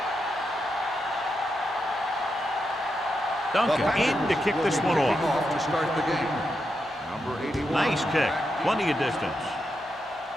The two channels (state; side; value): normal; both; correlation 0.85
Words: Duncan in to kick this one off. To start the game. Number 81. Nice kick. Plenty of distance.